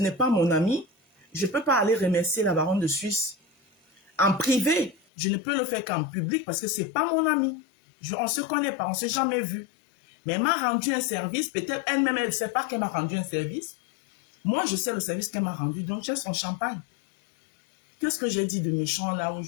pas mon amie, je ne peux pas aller remercier la baronne de Suisse en privé. Je ne peux le faire qu'en public parce que ce n'est pas mon amie. On ne se connaît pas, on ne s'est jamais vu. Mais elle m'a rendu un service. Peut-être elle-même, elle ne sait pas qu'elle m'a rendu un service. Moi, je sais le service qu'elle m'a rendu. Donc, j'ai son champagne. Qu'est-ce que j'ai dit de méchant là où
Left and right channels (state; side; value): drops out; right; at 5.0 s